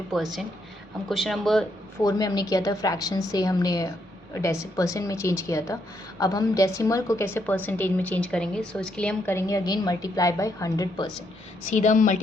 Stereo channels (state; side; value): normal; both; correlation 0.76